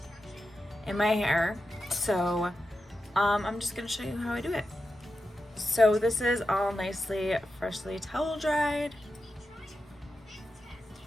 in my hair. So I'm just gonna show you how I do it. So this is all nicely freshly towel dried.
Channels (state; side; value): normal; both; correlation 0.89